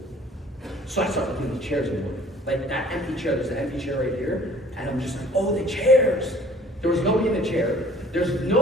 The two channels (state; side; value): normal; both; correlation 0.53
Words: So I started looking at the chairs more. Like that empty chair, there's an empty chair right here. And I'm just like, oh, the chairs. There was nobody in the chair. There's